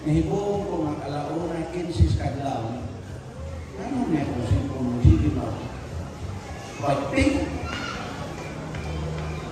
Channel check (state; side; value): identical; both; correlation 1.00